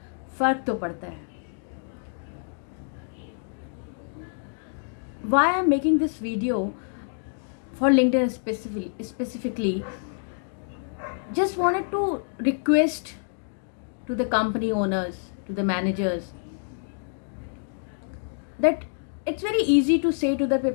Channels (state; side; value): silent; right; digital silence